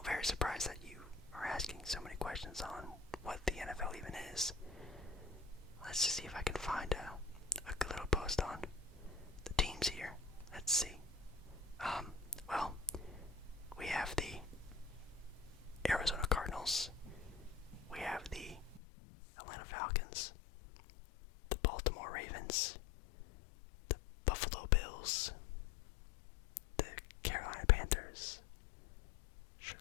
very surprised that you are asking so many questions on what the NFL even is. Let's just see if I can find a good little post on the teams here. Let's see. Well, we have the Arizona Cardinals. We have the Atlanta Falcons, the Baltimore Ravens, the Buffalo Bills, the Carolina Panthers,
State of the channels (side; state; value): right; drops out; at 18.8 s